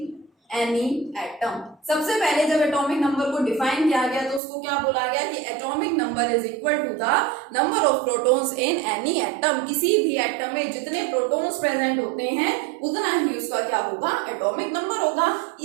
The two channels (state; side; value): drops out; left; at 4.4 s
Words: any atom. सबसे पहले जब एटॉमिक नंबर को डिफाइन किया गया तो उसको क्या बोला गया कि atomic number is equal to the number of protons in any atom. किसी भी एटम में जितने प्रोटॉन्स प्रेजेंट होते हैं उतना ही उसका क्या होगा, एटॉमिक नंबर होगा।